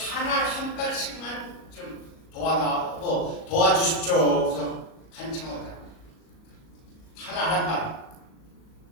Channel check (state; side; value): late; right; 37 ms